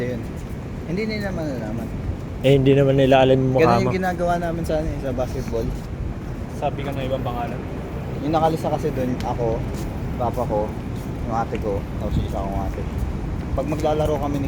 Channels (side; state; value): both; identical; correlation 1.00